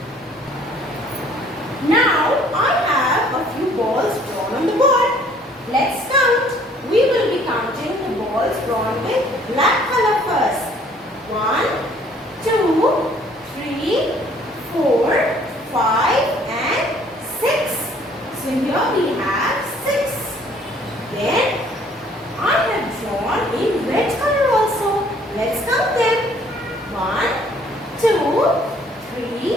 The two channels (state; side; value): normal; both; correlation 0.59